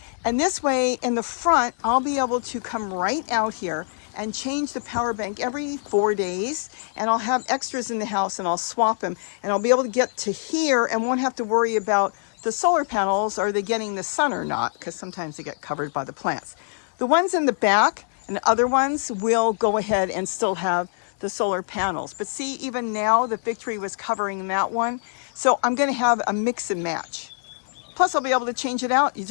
And this way, in the front, I'll be able to come right out here and change the power bank every 4 days. And I'll have extras in the house and I'll swap them. And I'll be able to get to here and won't have to worry about the solar panels. Are they getting the sun or not? Because sometimes they get covered by the plants. The ones in the back and other ones will go ahead and still have the solar panels. But see, even now the fig tree was covering that one. So I'm going to have a mix and match. Plus I'll be able to change it out. You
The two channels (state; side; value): silent; right; digital silence